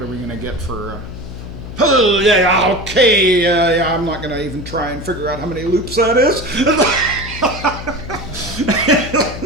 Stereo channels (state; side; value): noise; left; hum, 11 dB below the sound